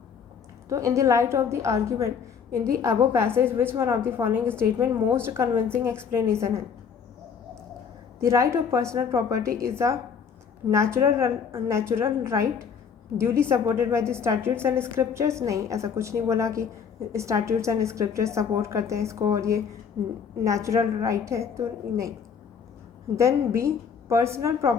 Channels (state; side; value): quieter; right; 6.7 dB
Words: तो in the light of the argument in the above passage which one of the following statement most convincing explanation है। The right of personal property is a natural right duly supported by the statutes and scriptures. नहीं, ऐसा कुछ नहीं बोला कि statutes and scriptures support करते हैं इसको और ये नेचुरल राइट है, तो नहीं। Then B, personal